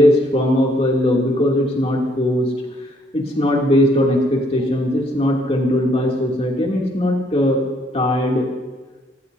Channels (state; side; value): normal; both; correlation 0.67